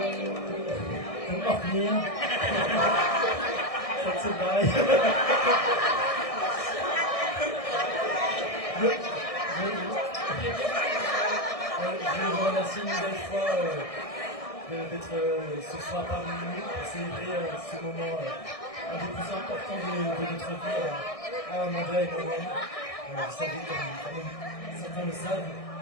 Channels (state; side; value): late; right; 1.6 ms